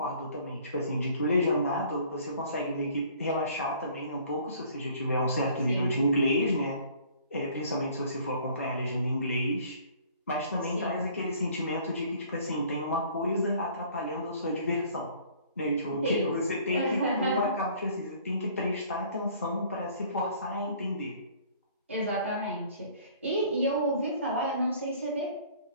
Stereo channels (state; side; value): inverted; both; correlation -0.54